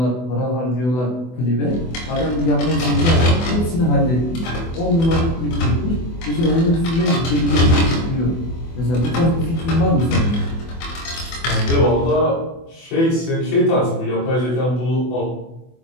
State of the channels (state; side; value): late; right; 24 ms